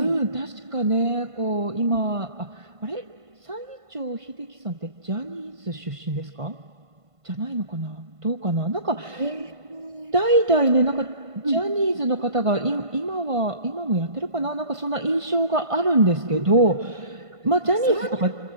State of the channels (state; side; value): late; left; 1.5 ms